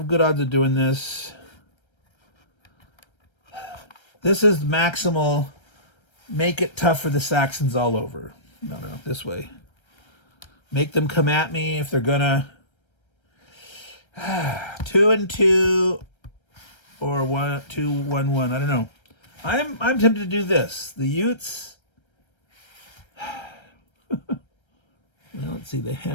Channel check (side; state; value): right; late; 1.3 ms